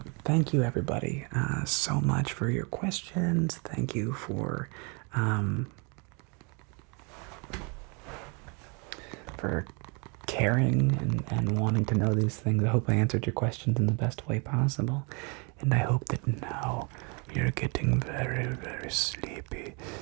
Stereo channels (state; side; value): quieter; left; 33.0 dB